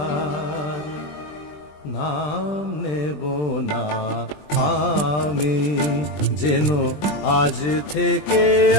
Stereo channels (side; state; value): right; late; 20 ms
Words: নাম নেব না আমি, যেন আজ থেকে